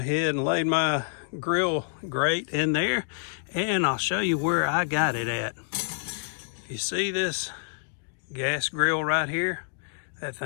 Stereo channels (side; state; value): right; silent; digital silence